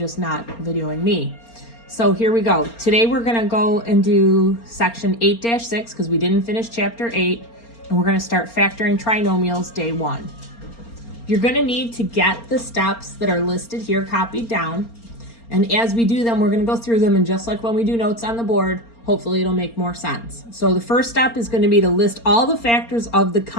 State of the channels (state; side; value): late; right; 4.3 ms